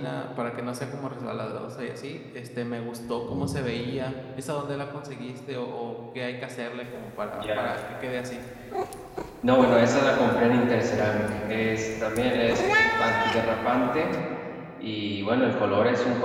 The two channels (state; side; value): identical; both; correlation 1.00